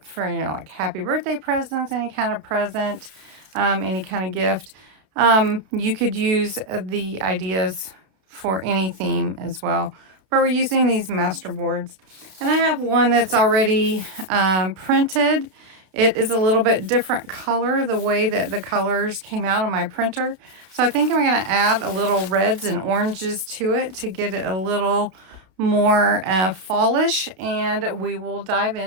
like happy birthday presents, any kind of present, any kind of gift. You could use the ideas for any theme as well. But we're using these master boards. And I have one that's already printed. It is a little bit different color, the way that the colors came out on my printer. So I think I'm going to add a little reds and oranges to it to get it a little more fallish, and we will dive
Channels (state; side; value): late; left; 31 ms